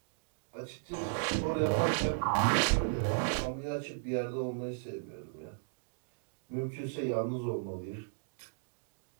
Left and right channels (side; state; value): left; silent; digital silence